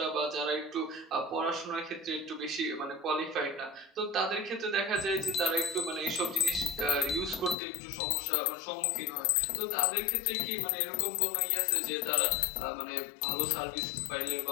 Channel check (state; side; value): drops out; right; at 7.6 s